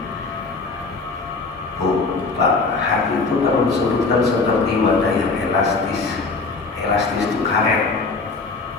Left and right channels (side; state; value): right; quieter; 4.0 dB